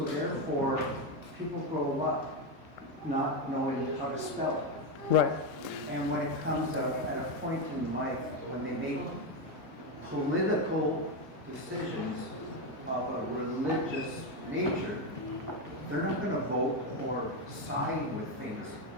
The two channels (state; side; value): normal; both; correlation 0.09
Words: therefore, people grow up not knowing how to spell it. Right. And when it comes out at a point in life when they make political decisions of a religious nature, they're not going to vote or side with things